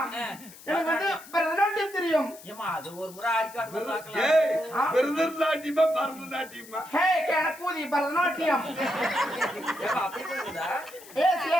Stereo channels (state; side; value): noise; left; hiss, 19 dB below the sound